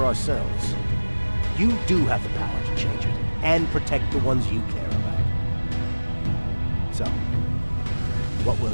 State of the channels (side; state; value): both; inverted; correlation -1.00